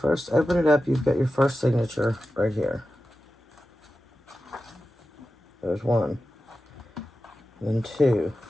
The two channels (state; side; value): normal; both; correlation 0.93